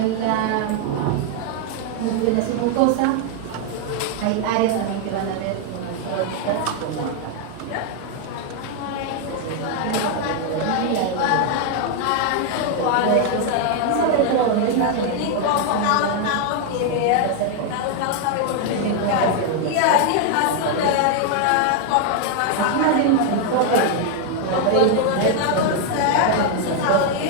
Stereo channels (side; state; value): both; different; correlation 0.01